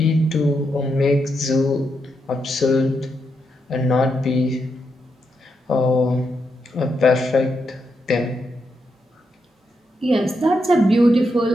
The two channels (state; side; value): normal; both; correlation 0.82